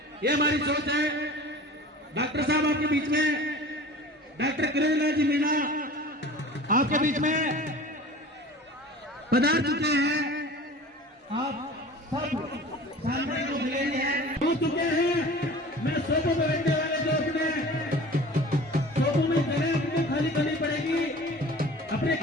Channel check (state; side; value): normal; both; correlation 0.41